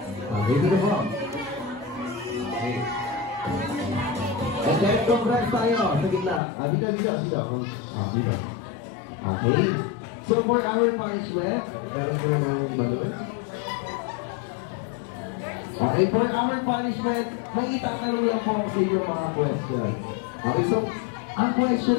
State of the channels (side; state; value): right; drops out; at 6.4 s